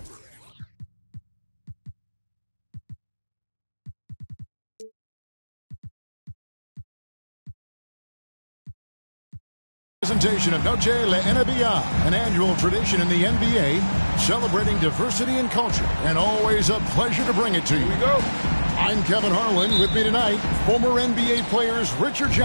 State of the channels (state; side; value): inverted; both; correlation -1.00